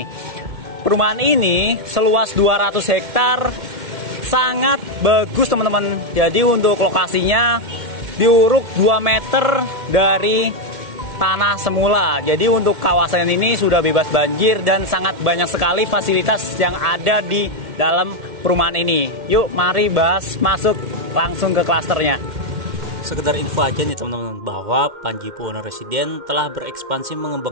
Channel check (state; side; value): late; left; 1.7 ms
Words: Perumahan ini seluas 200 hektar, sangat bagus teman-teman. Jadi untuk lokasinya diuruk 2 meter dari tanah semula. Jadi untuk kawasan ini sudah bebas banjir dan sangat banyak sekali fasilitas yang ada di dalam perumahan ini. Yuk mari bahas, masuk langsung ke klasternya. Sekedar info aja nih teman-teman, bahwa Panji Buwono Residen telah berekspansi